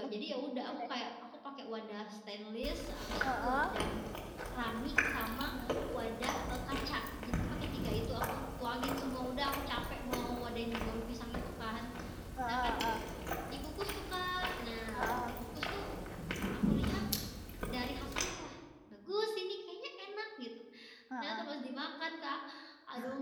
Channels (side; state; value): both; identical; correlation 1.00